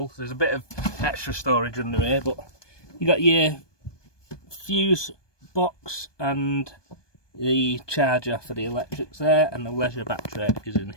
There's a bit of extra storage under here, but you got your fuse box and the charger for the electrics there, and the leisure battery is in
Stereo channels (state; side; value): late; right; 1.2 ms